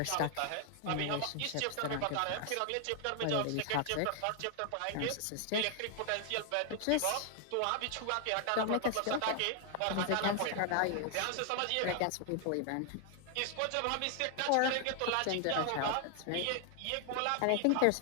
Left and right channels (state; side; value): different; both; correlation 0.00